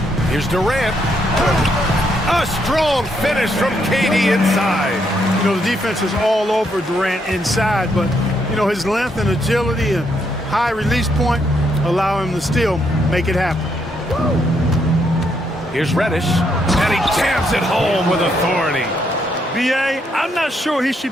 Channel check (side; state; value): both; normal; correlation 0.75